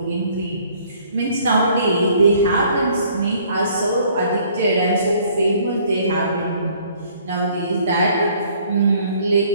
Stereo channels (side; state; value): both; inverted; correlation -0.60